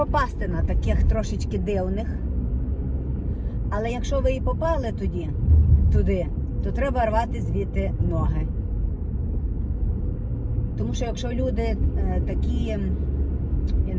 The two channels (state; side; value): identical; both; correlation 1.00